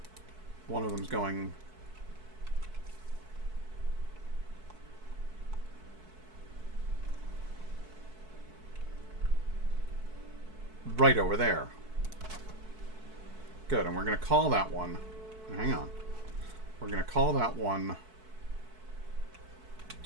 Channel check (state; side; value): late; left; 4.6 ms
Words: One of them's going right over there. Good, and we're going to call that one... Hang on. We're going to call that one...